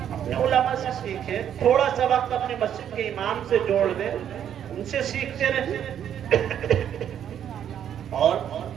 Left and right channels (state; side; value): quieter; left; 9.6 dB